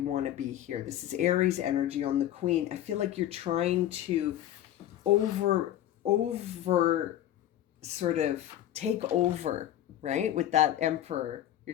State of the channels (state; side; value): quieter; right; 12.3 dB